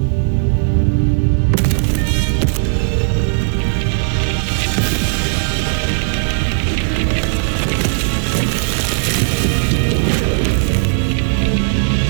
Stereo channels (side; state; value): left; silent; digital silence